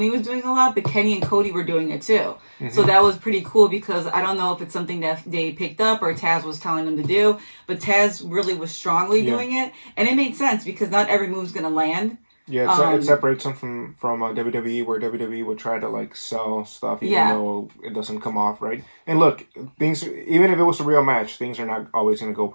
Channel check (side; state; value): both; inverted; correlation -1.00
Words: was doing a lot, but Kenny and Cody were doing it too. So that was pretty cool because I don't know if it's something that they picked up or Taz was telling them to do, but Taz really was strongly doing it, and it made sense because not every move's gonna land. Yeah, it separates them from WWE, where WWE would try to sell stuff even though it doesn't come off right. And look, things, even if it was a real match, things are not always gonna go